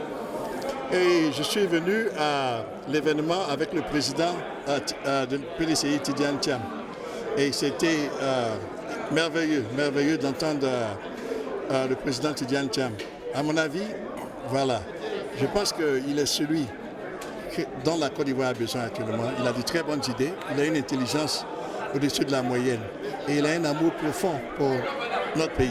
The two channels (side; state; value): both; identical; correlation 1.00